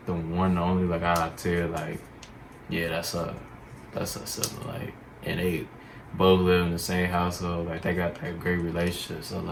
the one and only, like I tell you, like, yeah, that's a sibling, like, and they both live in the same household, like they got that great relationship. So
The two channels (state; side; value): identical; both; correlation 1.00